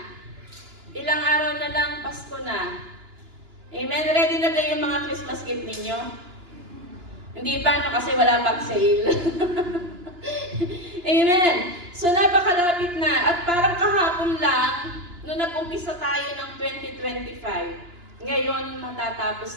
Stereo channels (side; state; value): left; late; 2.9 ms